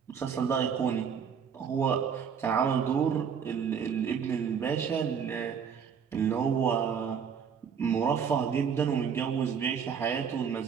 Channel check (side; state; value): left; quieter; 7.1 dB